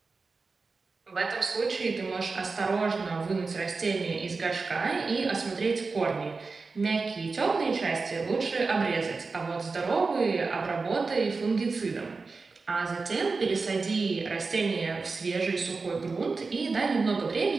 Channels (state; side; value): quieter; left; 4.2 dB